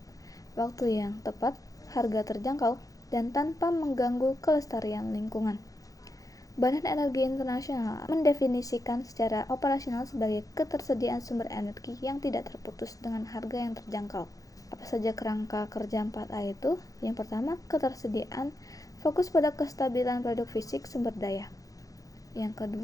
waktu yang tepat, harga terjangkau, dan tanpa mengganggu kelestarian lingkungan. Badan Energi Internasional mendefinisikan secara operasional sebagai ketersediaan sumber energi yang tidak terputus dengan harga yang terjangkau. Apa saja kerangka kerja 4A itu? Yang pertama, ketersediaan, fokus pada kestabilan produk fisik sumber daya. Yang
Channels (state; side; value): late; right; 0.17 ms